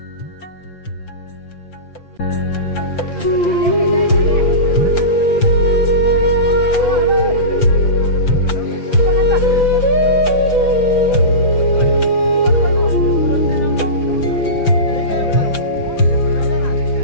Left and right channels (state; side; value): late; right; 5.9 ms